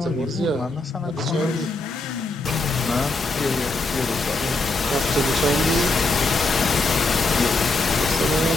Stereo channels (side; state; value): right; quieter; 3.1 dB